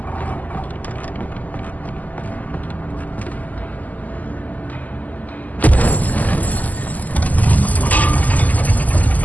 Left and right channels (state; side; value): late; right; 0.079 ms